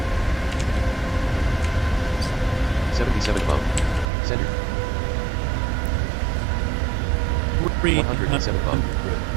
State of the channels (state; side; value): drops out; left; at 4.1 s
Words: 77 above. Center. 107 above.